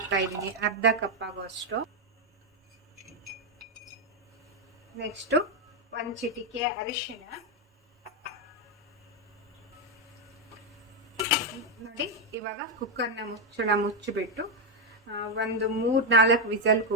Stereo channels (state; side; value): normal; both; correlation 0.03